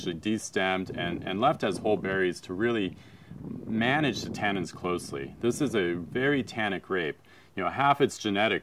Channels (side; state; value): both; identical; correlation 1.00